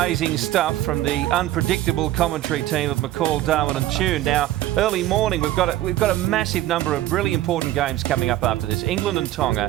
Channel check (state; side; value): quieter; left; 14.5 dB